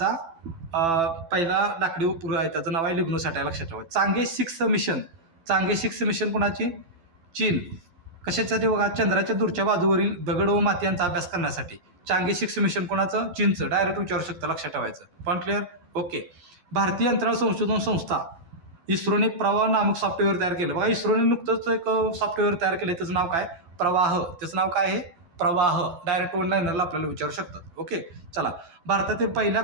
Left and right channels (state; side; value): late; left; 12 ms